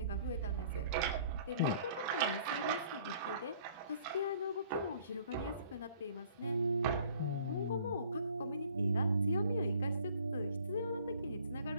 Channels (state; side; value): inverted; both; correlation -0.56